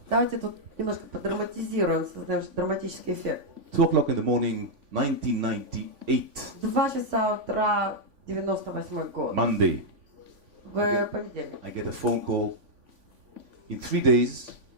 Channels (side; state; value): left; late; 3.5 ms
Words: Давайте тут немножко подраматизируем, создаем драматический эффект. 2 o'clock in the morning, 1998, 2 часа утра, 98 год. Monday. В понедельник. I get a phone call. In 3 days,